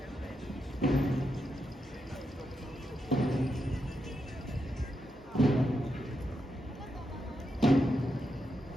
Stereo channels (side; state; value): both; normal; correlation 0.84